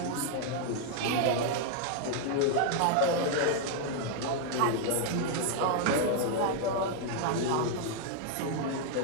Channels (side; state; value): both; different; correlation 0.00